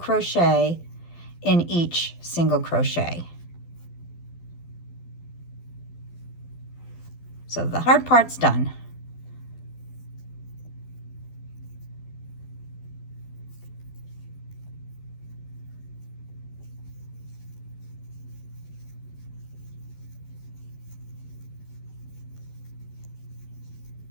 in each single crochet. So the hard part's done.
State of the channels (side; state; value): right; late; 12 ms